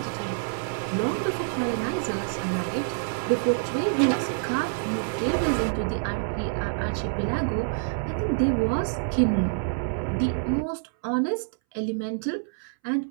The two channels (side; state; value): left; silent; 60 dB below the other